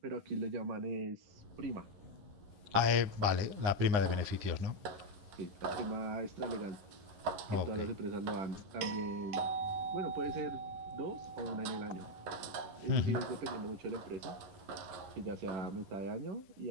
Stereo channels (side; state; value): left; late; 9.8 ms